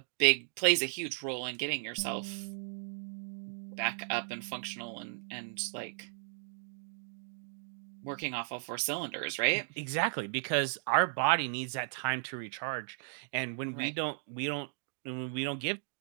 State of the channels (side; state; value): left; silent; digital silence